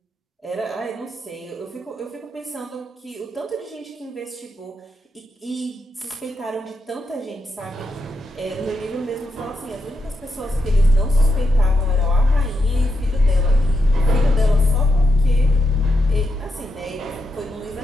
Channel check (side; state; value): both; normal; correlation 0.83